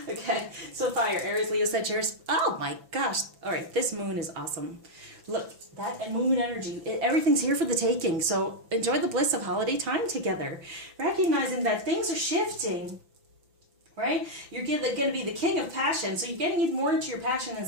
Okay, so fire, Aries, Leo, Sagittarius. Oh my gosh. All right, this moon is awesome. Look, that moon energy, everything's here for the taking. So enjoy the bliss of holiday time together. Recognizing that things are shifting, right? You're going to be the king of passion. So you're getting more into your passion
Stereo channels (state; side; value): late; left; 5.9 ms